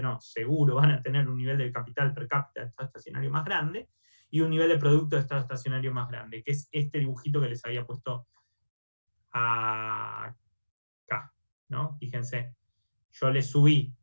seguro van a tener un nivel de capital per cápita de estado estacionario más grande, y un nivel de producto de estado estacionario más grande, que es este dibujito que les había puesto acá, ¿no? Fíjense. Yo le subí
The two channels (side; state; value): both; inverted; correlation -1.00